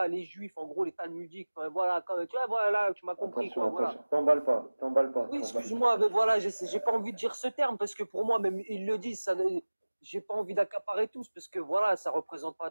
les Juifs, en gros, les Talmudiques. Voilà, tu vois, voilà, tu m'as compris, quoi, voilà. T'emballes pas. Oui, excuse-moi, mais voilà, j'ai pas envie de dire ce terme parce que pour moi, même ils le disent, ça, j'ai pas envie d'accaparer tous parce que voilà, ça représente pas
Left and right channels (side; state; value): both; inverted; correlation -1.00